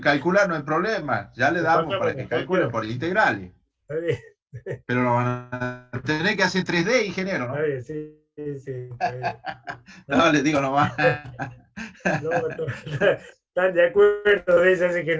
calcular no hay problema, ya le Le damos pasamos para la que calculen cuestión. por integrales, Está bien, pero lo van a tener que hacer 3D, ingeniero, está ¿no? bien, sí, sí, sí, está bien. No, les digo nomás. No, están de acuerdo de eso, así que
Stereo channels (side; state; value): both; identical; correlation 1.00